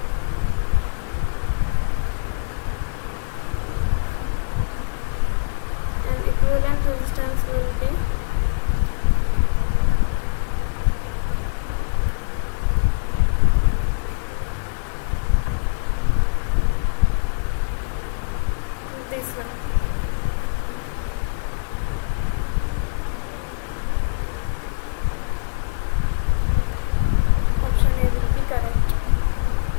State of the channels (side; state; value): right; silent; digital silence